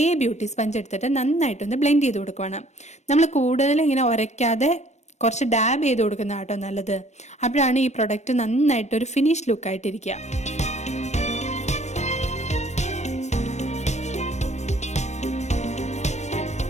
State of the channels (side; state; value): right; late; 0.33 ms